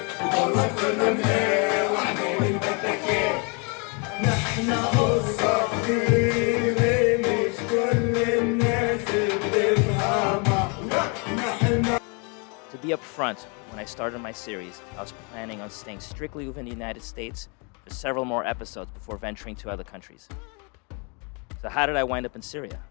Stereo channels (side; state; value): right; quieter; 34.0 dB